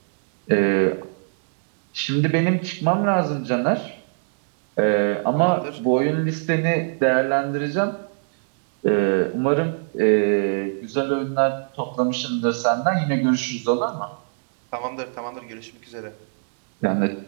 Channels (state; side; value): silent; left; digital silence